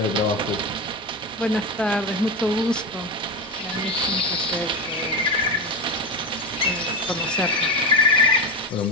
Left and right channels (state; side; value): normal; both; correlation 0.17